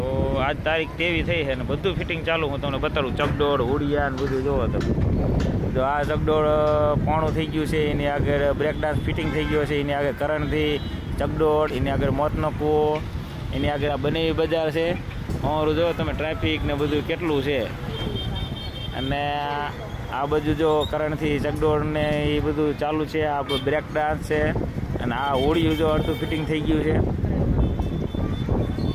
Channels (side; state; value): both; identical; correlation 1.00